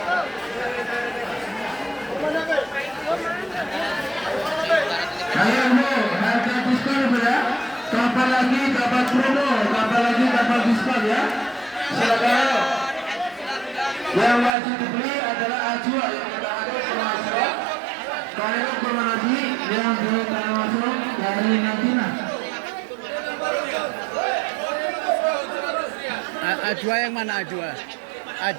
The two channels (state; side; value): drops out; left; at 14.5 s